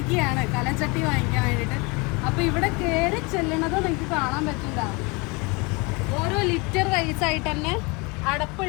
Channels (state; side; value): quieter; right; 28.1 dB